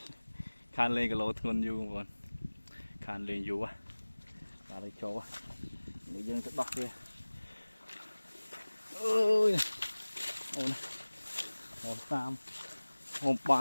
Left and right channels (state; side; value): inverted; both; correlation -1.00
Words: khan lên cái lỗ thôn du còn khan lên du á và đây chỗ người dân sẽ bắt kia ơi ôi hồn tam hồn